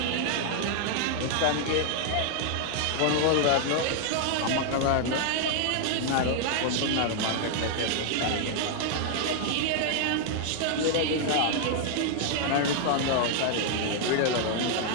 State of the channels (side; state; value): both; different; correlation 0.00